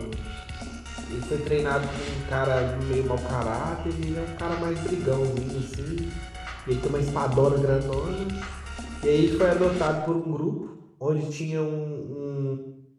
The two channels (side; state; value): both; identical; correlation 1.00